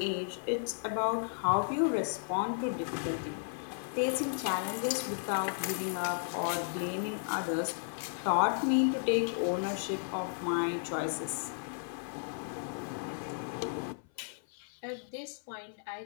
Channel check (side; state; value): right; silent; 55 dB below the other